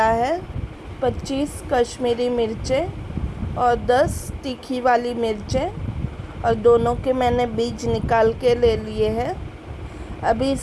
है 25 कश्मीरी मिर्चें और 10 तीखी वाली मिर्चें, और दोनों के मैंने बीज निकाल के ले लिए हैं। अभी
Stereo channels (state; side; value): identical; both; correlation 1.00